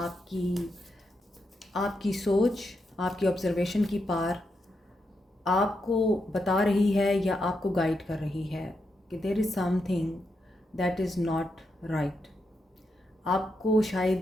आपकी सोच, आपकी ऑब्जर्वेशन की पार आपको बता रही है या आपको गाइड कर रही है कि there is something that is not right. आपको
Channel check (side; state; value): both; normal; correlation 0.83